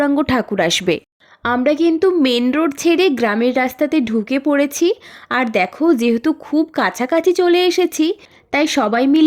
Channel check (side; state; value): both; identical; correlation 1.00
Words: ঠাকুর আসবে। আমরা কিন্তু মেন রোড ছেড়ে গ্রামের রাস্তাতে ঢুকে পড়েছি। আর দেখো, যেহেতু খুব কাছাকাছি চলে এসেছি, তাই সবাই